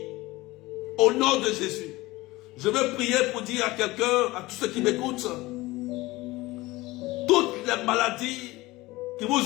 Au nom de Jésus. Je veux prier pour dire à quelqu'un, à tous ceux qui m'écoutent, toutes les maladies qui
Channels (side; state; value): right; quieter; 20.0 dB